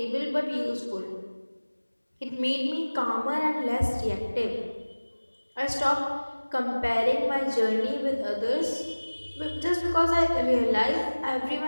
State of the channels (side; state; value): both; inverted; correlation -1.00